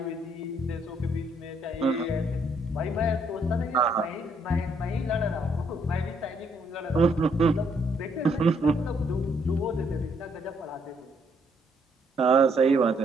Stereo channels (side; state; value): both; normal; correlation 0.71